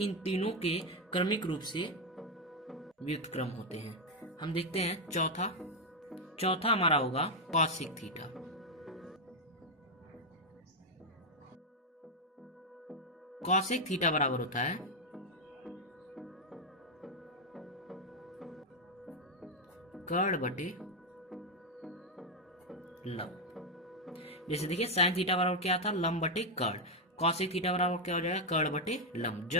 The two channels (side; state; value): both; normal; correlation 0.03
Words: तीनों के क्रमिक रूप से व्युत्क्रम होते हैं। हम देखते हैं चौथा हमारा होगा कॉसिक थीटा। कॉसिक थीटा बराबर होता है कर्ण बटे लंब। जैसे देखिए साइन थीटा बराबर क्या था लंब बटे कर्ण, कॉसेक थीटा बराबर क्या हो जाएगा, कर्ण बटे लंब,